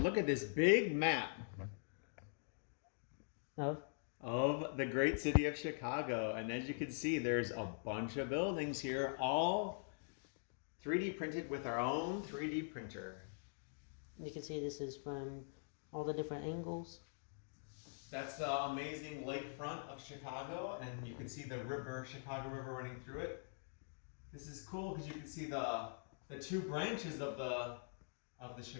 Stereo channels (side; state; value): right; silent; digital silence